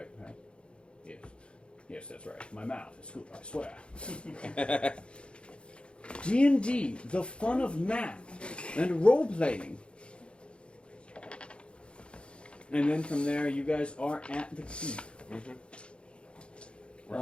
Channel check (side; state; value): right; late; 0.057 ms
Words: right? Yes. Yes, that's right. My mouth is good, I swear. D&D, the fun of math and role-playing. And then from there, you guys are at the keep. We're